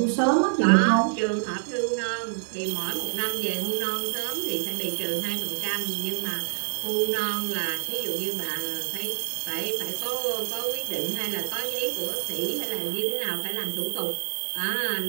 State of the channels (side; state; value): left; silent; digital silence